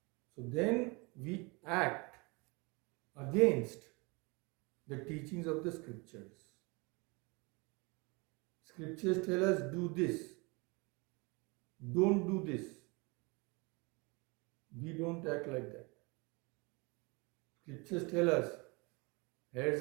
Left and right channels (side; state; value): left; quieter; 28.0 dB